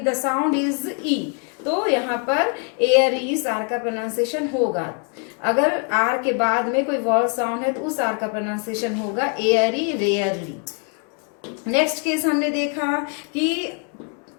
द साउंड इज ई. तो यहाँ पर एयरी आर का प्रोनाउंसिएशन होगा. अगर R के बाद में कोई वॉल साउंड है तो उस R का प्रोनाउंसिएशन होगा एयरी, रेयरली. नेक्स्ट केस हमने देखा कि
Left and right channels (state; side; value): quieter; right; 39.2 dB